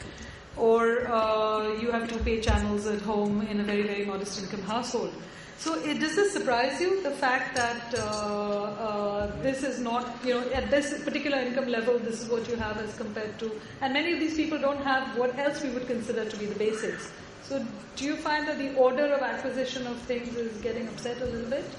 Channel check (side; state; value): both; identical; correlation 1.00